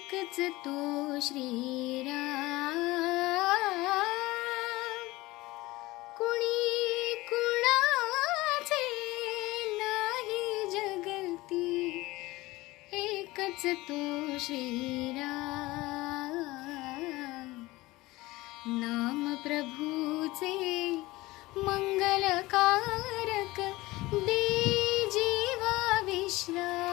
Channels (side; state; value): right; quieter; 19.8 dB